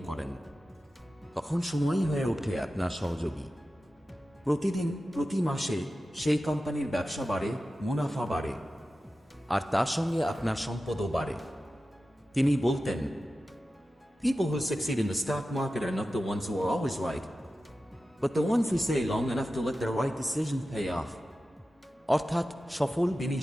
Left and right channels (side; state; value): both; normal; correlation 0.94